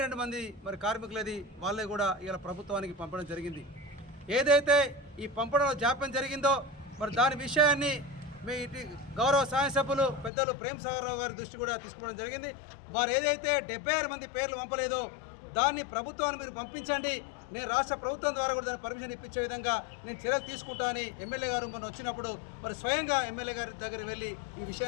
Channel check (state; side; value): drops out; right; at 10.3 s